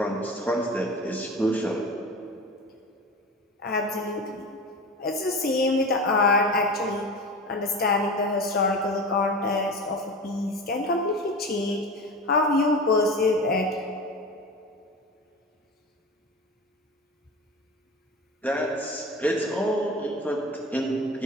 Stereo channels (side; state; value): both; normal; correlation 0.31